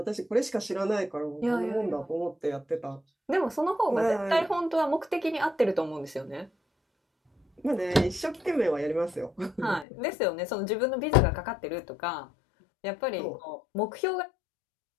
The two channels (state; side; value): drops out; right; at 9.9 s